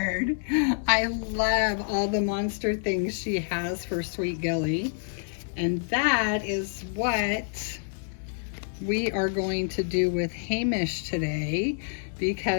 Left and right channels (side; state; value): right; silent; 60 dB below the other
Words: I love all the monster things she has for Sweet Gilly. And that is what we are going to do with Hamish today,